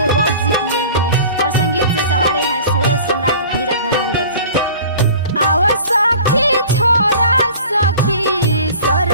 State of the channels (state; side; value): inverted; both; correlation -0.43